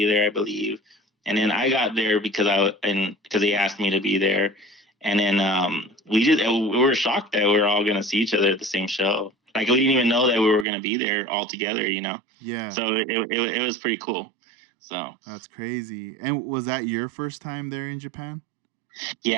there, I believe, and then I got there because they asked me to be there, and then we were shocked that we were all gonna see each other at the same show. Like we didn't even know that we were gonna be there all together, you know. Yeah, So it was pretty cool. So. that's crazy. And was that your first time there in Japan?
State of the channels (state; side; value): drops out; left; at 10.7 s